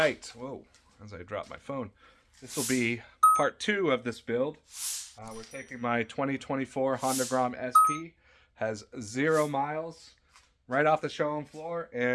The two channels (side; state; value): both; identical; correlation 1.00